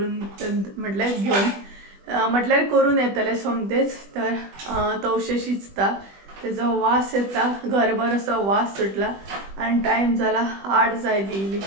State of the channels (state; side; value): late; left; 20 ms